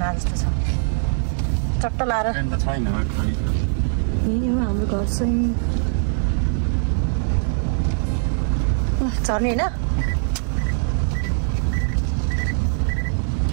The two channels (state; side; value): silent; left; 56 dB below the other